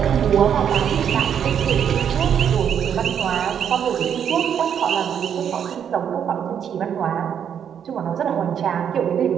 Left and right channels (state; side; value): quieter; left; 8.4 dB